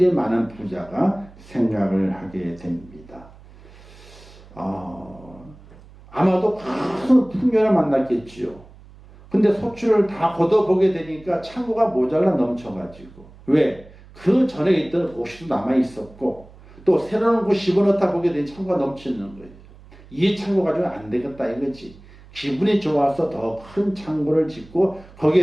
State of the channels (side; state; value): right; noise; hum, 22 dB below the sound